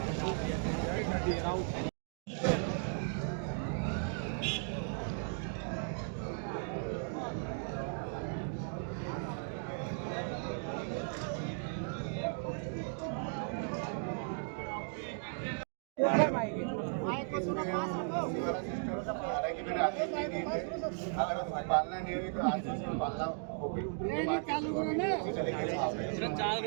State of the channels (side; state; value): left; silent; 54 dB below the other